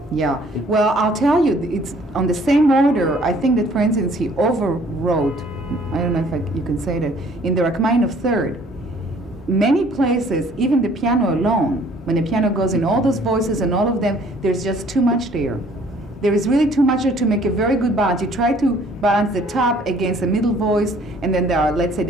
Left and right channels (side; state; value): both; normal; correlation 0.58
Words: Yeah, well, I'll tell you, it's on the same order. I think that, for instance, he overwrote, I don't know if you can say that, in the Rachmaninoff Third. Many places, even the piano alone, when the piano goes in all those voices and all of them, there's just too much there. There is really too much there to make a very good balance. You try to balance the top against the middle voice, and then there are, let's say,